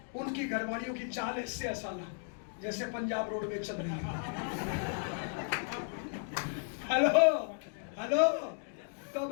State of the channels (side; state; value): right; silent; 55 dB below the other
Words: उनकी घरवालियों की चाल ऐसे है साला जैसे पंजाब रोड में चल रही है। हेलो हेलो, तो